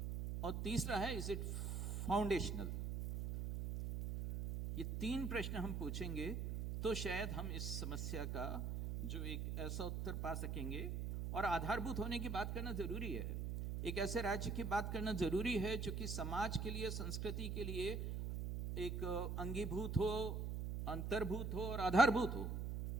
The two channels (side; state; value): right; noise; hum, 2 dB below the sound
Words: और तीसरा है, इज इट फाउंडेशनल? ये तीन प्रश्न हम पूछेंगे तो शायद हम इस समस्या का जो एक ऐसा उत्तर पा सकेंगे। और आधारभूत होने की बात करना जरूरी है, एक ऐसे राज्य की बात करना जरूरी है जो कि समाज के लिए, संस्कृति के लिए एक अंगीभूत हो, अंतर्भूत हो और आधारभूत हो।